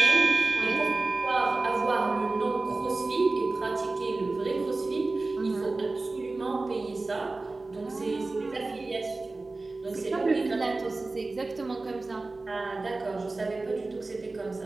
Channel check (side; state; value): left; quieter; 3.4 dB